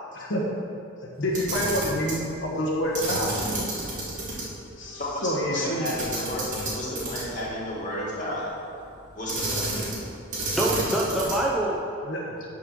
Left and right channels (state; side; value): normal; both; correlation 0.26